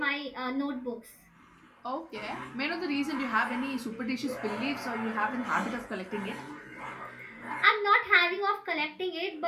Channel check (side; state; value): both; identical; correlation 1.00